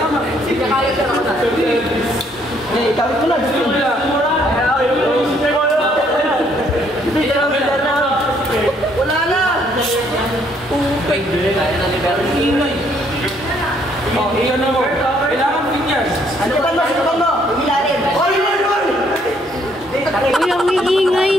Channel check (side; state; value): both; normal; correlation 0.67